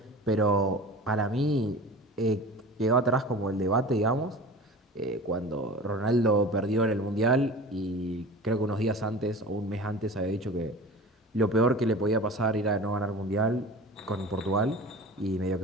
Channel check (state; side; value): normal; both; correlation 0.37